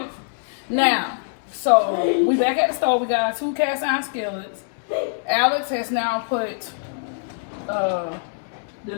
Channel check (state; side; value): silent; right; digital silence